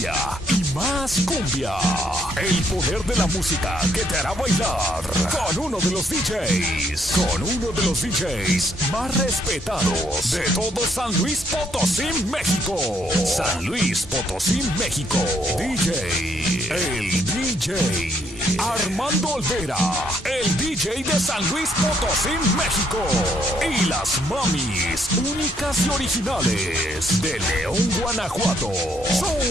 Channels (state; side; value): normal; both; correlation 0.71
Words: y más cumbia. El poder de la música que te hará bailar con uno de los DJs más respetados de todo San Luis Potosí, México. San Luis Potosí, México. El DJ Armando Olvera, el DJ de San Luis Potosí, México. Y las mamis únicas y originales de León, Guanajuato.